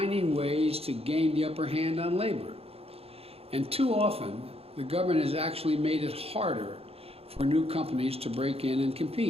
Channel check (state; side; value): late; left; 0.29 ms